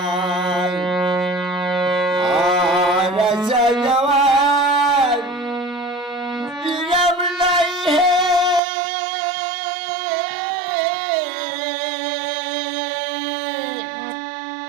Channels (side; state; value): left; drops out; at 8.6 s